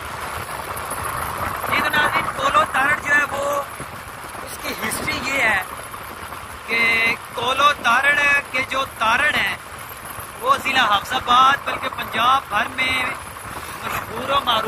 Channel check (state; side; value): identical; both; correlation 1.00